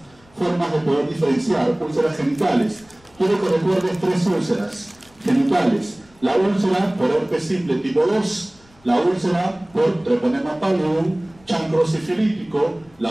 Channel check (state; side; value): noise; left; rumble, 30 dB below the sound